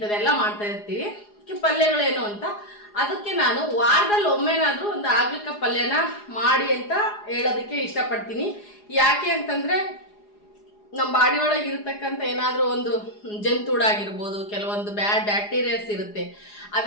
ಮಾಡ್ತಾ ಇರ್ತೀವಿ. ಪಲ್ಯಗಳೇನು ಅಂತ ಅದಕ್ಕೆ ನಾನು ವಾರದಲ್ಲಿ ಒಮ್ಮೆನಾದ್ರೂ ಒಂದು ಆಗ್ಲಿಕ್ಕ ಪಲ್ಯನ ಮಾಡಿ ಅಂತ ಹೇಳೋದಕ್ಕೆ ಇಷ್ಟಪಡ್ತೀನಿ. ಯಾಕೆ ಅಂತಂದ್ರೆ ನಮ್ಮ ಬಾಡಿ ಒಳಗೆ ಇರತಕ್ಕಂಥ ಏನಾದರೂ ಒಂದು ಜಂತುಳಾಗಿರ್ಬೋದು, ಕೆಲವೊಂದು ಬ್ಯಾಕ್ಟೀರಿಯಾಸ್ ಇರುತ್ತೆ,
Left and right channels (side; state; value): right; late; 4.8 ms